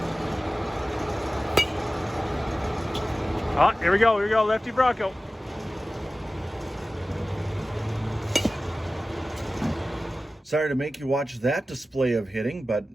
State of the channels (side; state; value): both; normal; correlation 0.96